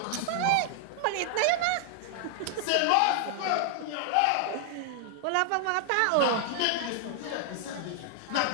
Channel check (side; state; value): both; different; correlation -0.01